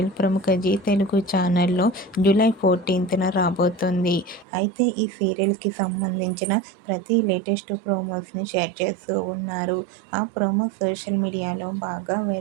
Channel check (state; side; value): drops out; left; at 4.5 s